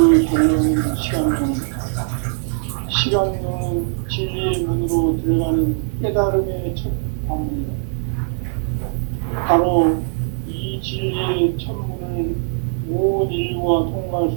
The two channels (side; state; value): left; silent; 58 dB below the other